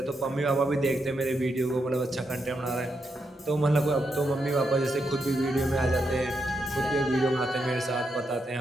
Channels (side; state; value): both; normal; correlation 0.82